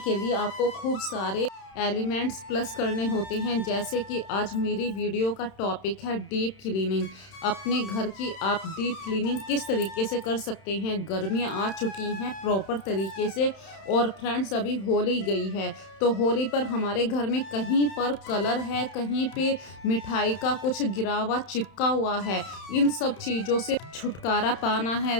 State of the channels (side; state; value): right; late; 31 ms